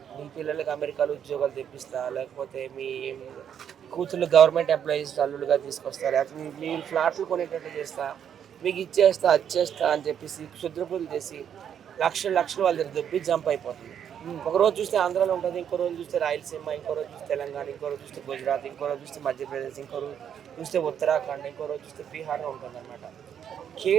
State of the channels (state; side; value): quieter; left; 8.7 dB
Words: మీ పిల్లలకి అమెరికాలో ఉద్యోగాలు తెప్పిస్తా, లేకపోతే మీ కూతుళ్ళు గవర్నమెంట్ ఎంప్లాయీస్ అల్లులుగా తీసుకొస్తా, లేకపోతే మీరు ఫ్లాట్లు కొనేటట్టు చేస్తా, మీకు ఇచ్చేస్తా, అది చేస్తా అని చెప్పేసి క్షుద్రపూజలు చేసి లక్షలు లక్షలు వాళ్ళ దగ్గర దొబ్బి జంప్ అయిపోతుంది. ఒక రోజు చూస్తే ఆంధ్రాలో ఉంటుంది, ఇంకో రోజు చూస్తే రాయలసీమ, ఇంకో రోజు చూస్తే తెలంగాణ, ఇంకో రోజు చూస్తే గుజరాత్, ఇంకో రోజు చూస్తే మధ్యప్రదేశ్, ఇంకో రోజు చూస్తే ఉత్తరాఖండ్, ఇంకో రోజు చూస్తే బీహార్లో ఉంటుందన్నమాట.